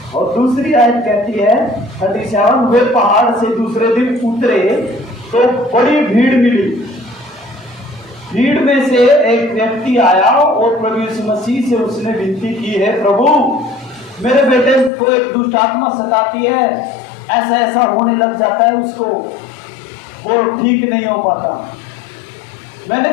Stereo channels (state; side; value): drops out; right; at 14.9 s